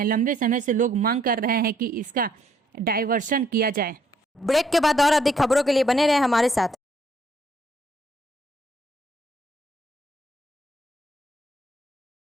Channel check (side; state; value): both; normal; correlation 0.68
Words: लंबे समय से लोग मांग कर रहे हैं कि इसका डायवर्शन किया जाए। ब्रेक के बाद और अधिक खबरों के लिए बने रहे हमारे साथ।